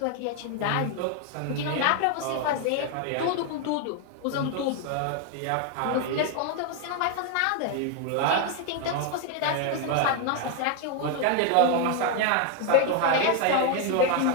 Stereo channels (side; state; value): both; different; correlation 0.01